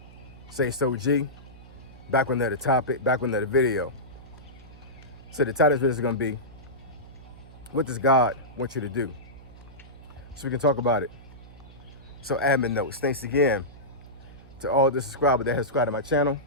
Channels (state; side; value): noise; right; hum, 19 dB below the sound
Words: Say so G. Back with another topic, back with another video. So the title of this video is gonna be, what does God want you to do? So we can talk about it. So admin notes, thanks again to all the subscribers that have subscribed to my channel.